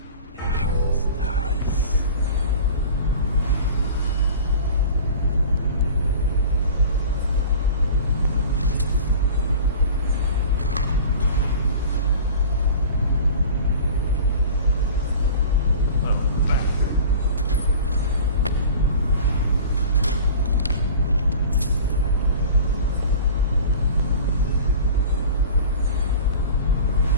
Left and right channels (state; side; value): inverted; both; correlation -0.39